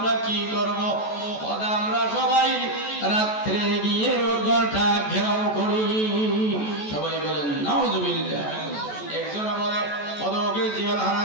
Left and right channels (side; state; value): right; late; 14 ms